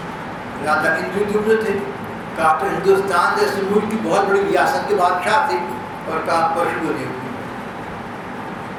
राजा इंद्रद्युम्न थे, कहा तो हिंदुस्तान जैसे मुल्क की बहुत बड़ी रियासत के बादशाह थे, और कहा पशु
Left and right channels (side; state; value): both; identical; correlation 1.00